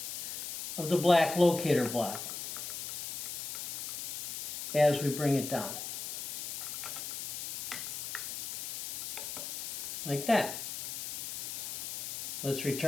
of the black locator block as we bring it down. Like that. Let's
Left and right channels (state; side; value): noise; left; hiss, 5 dB below the sound